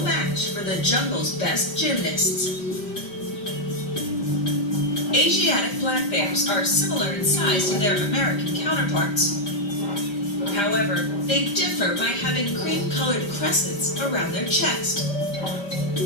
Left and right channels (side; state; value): right; late; 5.0 ms